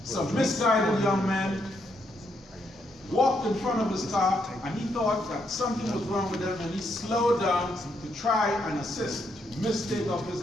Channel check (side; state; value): both; normal; correlation 0.77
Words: some misguided young men walked in front of his car, and he thought that something was wrong with them, and he slowed down to try and assist. Mistake of his